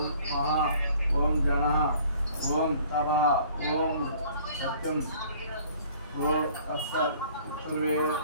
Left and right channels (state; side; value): inverted; both; correlation -0.54